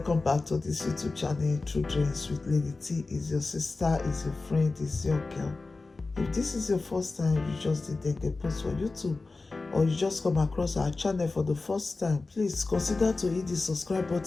back to this YouTube channel. True Dreams with Lady T. Is your sister, is your friend, is your girl. If this is your first time you just did a post for YouTube, or you just come across our channel for the first time, please consider to hit the subscribe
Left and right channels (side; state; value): right; quieter; 3.6 dB